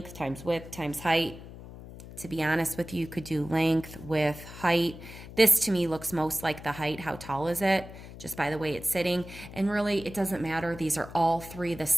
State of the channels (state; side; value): noise; left; hum, 14 dB below the sound